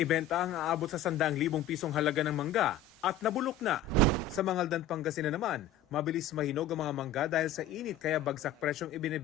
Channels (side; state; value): right; quieter; 5.7 dB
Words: ang aabot sa 100,000 pisong halaga ng mangga at nabulok na. Sa Mangaldan, Pangasinan naman, mabilis mahinog ang mga mangga dahil sa init kaya bagsak presyong